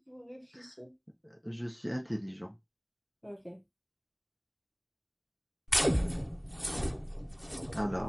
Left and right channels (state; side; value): identical; both; correlation 1.00